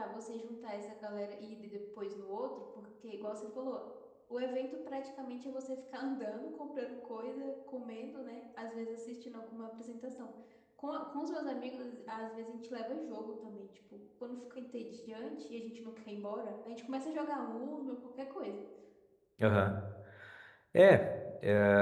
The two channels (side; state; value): both; identical; correlation 1.00